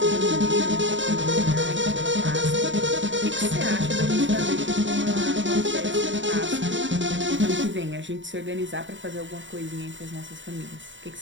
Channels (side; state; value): left; late; 0.54 ms